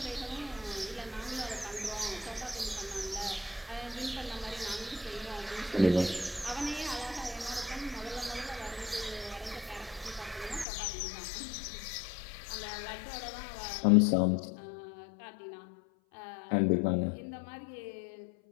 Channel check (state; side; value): drops out; right; at 10.7 s